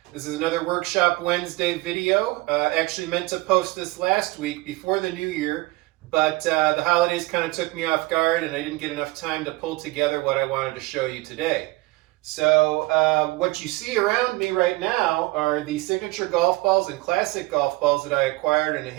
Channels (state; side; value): quieter; left; 21.5 dB